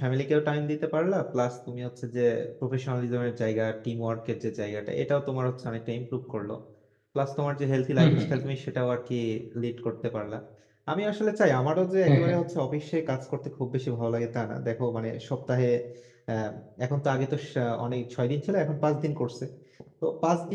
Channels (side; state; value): both; identical; correlation 1.00